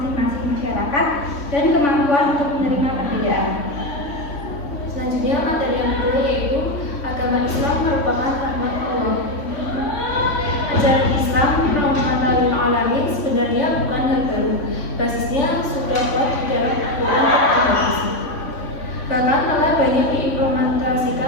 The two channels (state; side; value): late; right; 3.5 ms